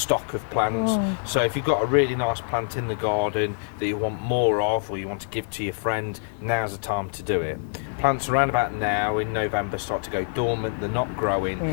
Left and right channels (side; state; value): right; silent; 62 dB below the other